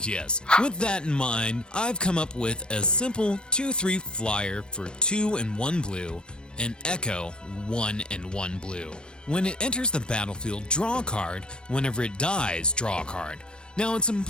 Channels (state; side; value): late; right; 0.053 ms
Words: With that in mind, I've come up with a simple 2/3 flyer for 2 and 1 blue, and Echo 1 and 1 blue. When it enters the battlefield, draw a card. Whenever it dies, draw a card. Now, it's